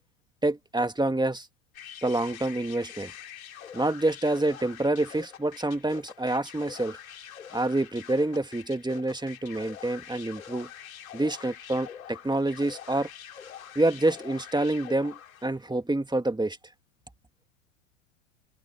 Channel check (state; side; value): normal; both; correlation 0.79